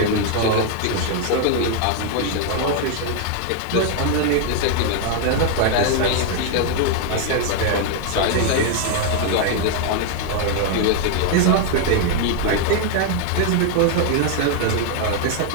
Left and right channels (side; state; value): both; different; correlation 0.00